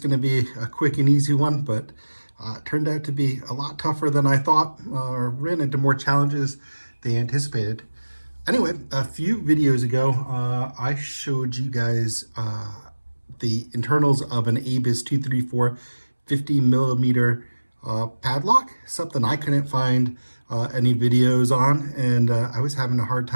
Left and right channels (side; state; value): both; inverted; correlation -1.00